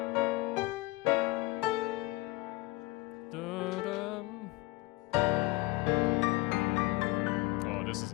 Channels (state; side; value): quieter; right; 21.5 dB